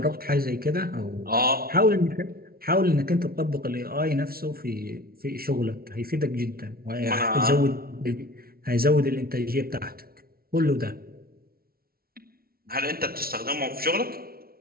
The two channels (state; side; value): late; left; 0.44 ms